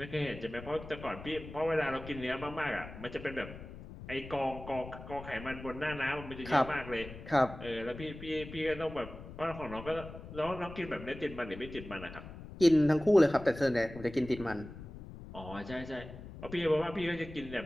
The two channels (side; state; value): left; noise; rumble, 13 dB below the sound